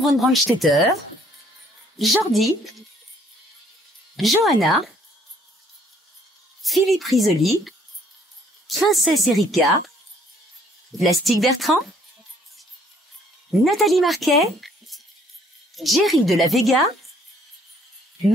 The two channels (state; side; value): normal; both; correlation 0.62